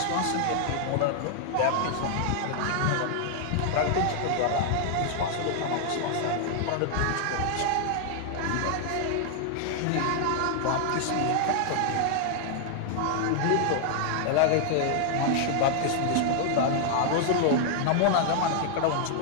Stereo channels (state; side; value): different; both; correlation 0.00